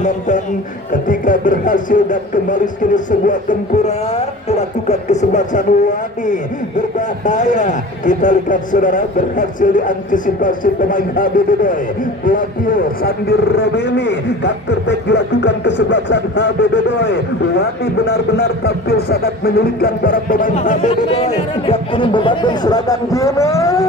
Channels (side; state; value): both; normal; correlation 0.38